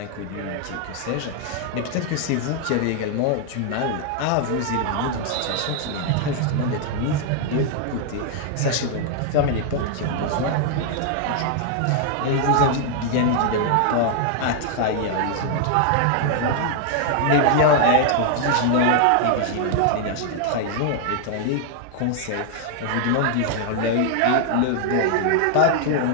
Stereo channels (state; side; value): different; both; correlation 0.00